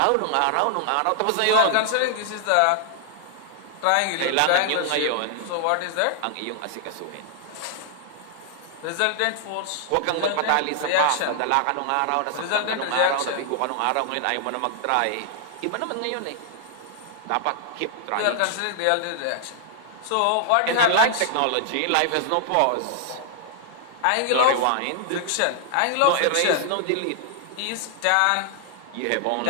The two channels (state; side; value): different; both; correlation 0.00